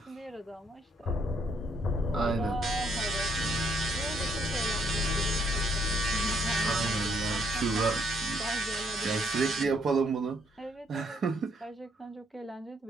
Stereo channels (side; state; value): both; normal; correlation 0.70